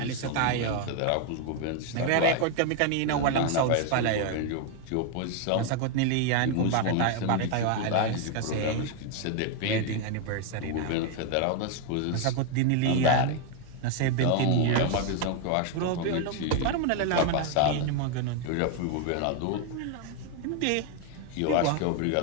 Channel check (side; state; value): both; different; correlation 0.01